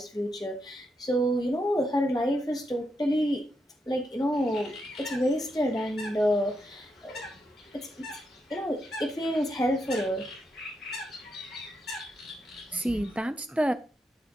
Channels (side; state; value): both; normal; correlation 0.82